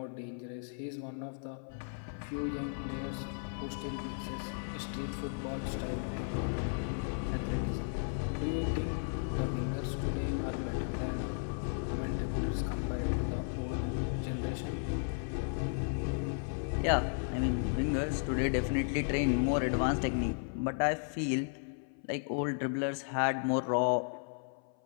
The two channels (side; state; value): right; silent; 55 dB below the other